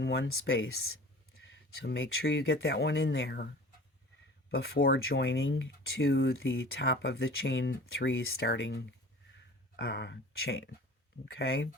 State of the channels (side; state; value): both; normal; correlation 0.42